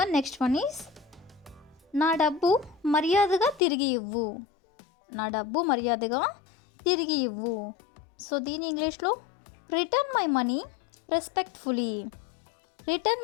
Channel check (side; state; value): right; drops out; at 3.6 s